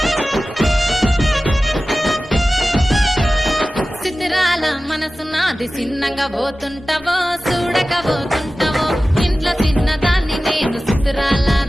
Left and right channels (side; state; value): both; normal; correlation 0.96